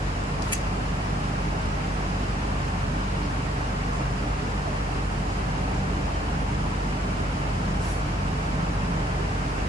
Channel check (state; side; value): normal; both; correlation 0.66